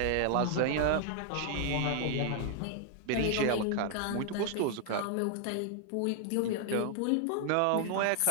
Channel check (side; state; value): both; different; correlation 0.00